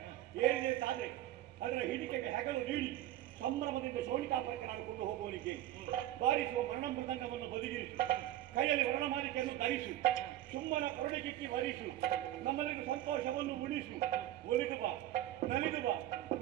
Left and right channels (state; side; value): quieter; left; 13.8 dB